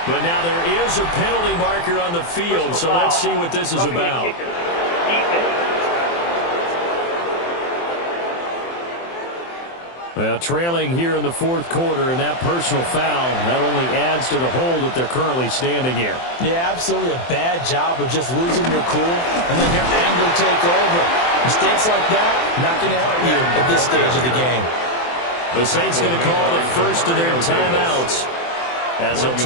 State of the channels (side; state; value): right; late; 23 ms